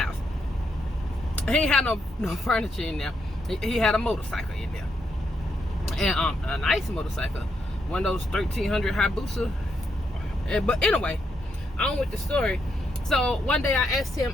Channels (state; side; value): normal; both; correlation 0.79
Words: He ain't had no furniture in there. He had a motorcycle in there, and a nice motorcycle, one of those 1300 Hayabusa. But anyway, on with the story. So one day I asked him,